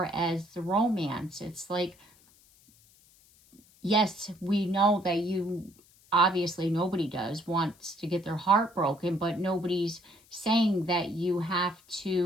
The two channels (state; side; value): noise; left; hiss, 29 dB below the sound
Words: as the romance, it's like, yes, we know that you, obviously nobody wants to get their heart broken, but nobody's saying that you have